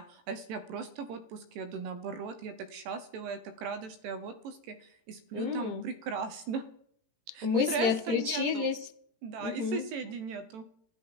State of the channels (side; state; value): left; late; 18 ms